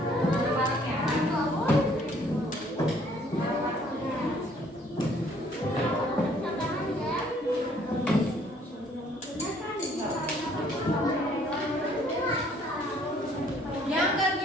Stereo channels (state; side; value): normal; both; correlation 0.61